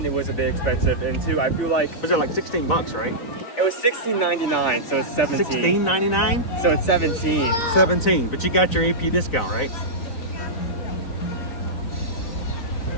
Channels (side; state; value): right; late; 3.9 ms